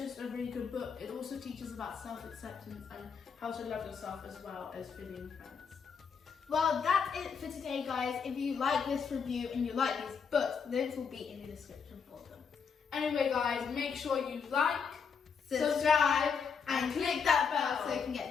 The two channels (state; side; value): quieter; right; 6.1 dB